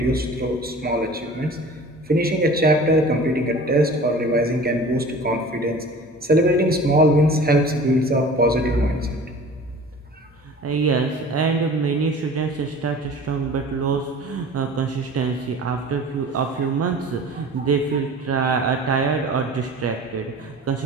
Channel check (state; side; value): normal; both; correlation 0.42